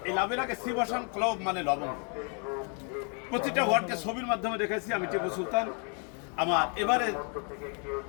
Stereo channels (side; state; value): right; quieter; 38.5 dB